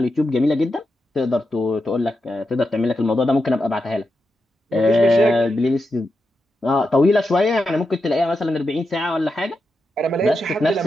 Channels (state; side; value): normal; both; correlation 0.87